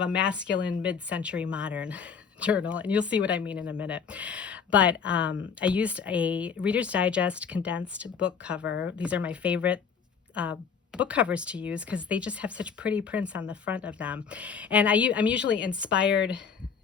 a masculine mid-century modern journal, and you'll see what I mean in a minute. But I used a Reader's Digest condensed book cover. These are my favorite book covers to use because they just have such pretty prints on the front of them. And I'm usually inspired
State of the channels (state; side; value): quieter; right; 6.4 dB